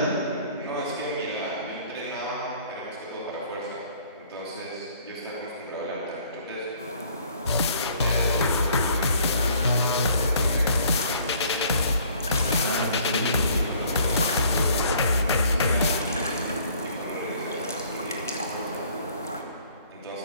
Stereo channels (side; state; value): both; inverted; correlation -0.57